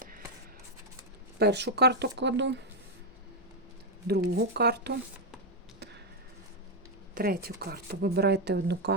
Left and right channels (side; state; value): both; normal; correlation 0.01